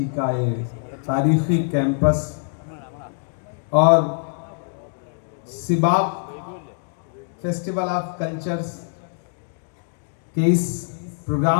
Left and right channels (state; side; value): silent; right; 63 dB below the other